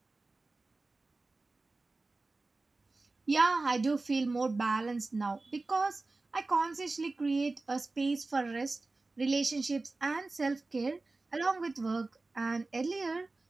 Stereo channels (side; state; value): left; quieter; 3.4 dB